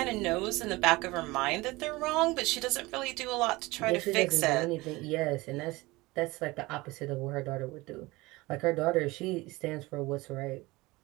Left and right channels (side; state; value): left; quieter; 21.4 dB